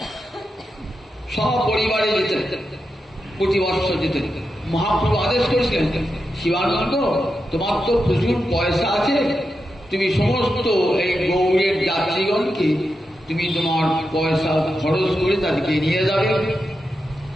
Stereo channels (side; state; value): both; normal; correlation 0.88